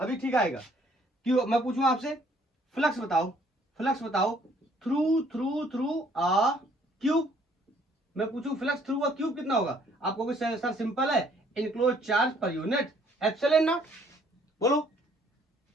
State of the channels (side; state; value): both; normal; correlation 0.62